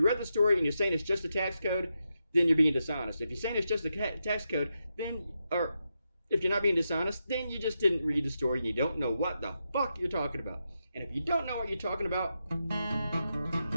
read the story and you're saying it's just a tax code, then you're being dishonest. If you're saying it's just a tax code, or if you're not being dishonest, then you just didn't read the story and you don't know what the fuck you're talking about. And if you don't know what you're talking about,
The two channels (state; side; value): inverted; both; correlation -0.86